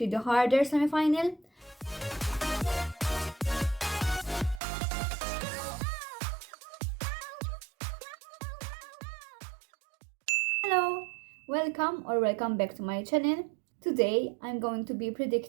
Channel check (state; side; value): drops out; left; at 4.6 s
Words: the harder semi-final. Hello, welcome back to my channel. Today I'm going to be